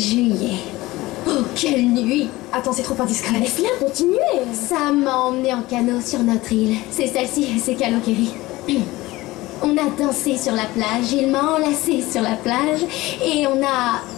Oh, quelle nuit! Attends, c'est trop indiscret. Laisse-la continuer. Ça m'a emmené en canot sur notre île. C'est celle-ci, c'est Kalokeri. On a dansé sur la plage, il m'a enlacé sur la plage, et on a...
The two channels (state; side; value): quieter; right; 19.1 dB